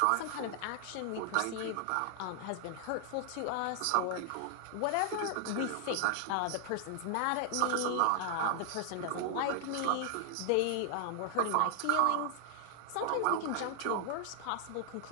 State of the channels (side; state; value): both; different; correlation 0.00